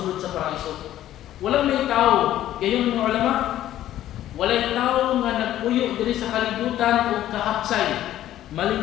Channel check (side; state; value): right; quieter; 12.9 dB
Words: sa paraiso. Walang may tao, gayon mga ulama, walay tao nga nagpuyo diri sa kalibutan o kahapsay.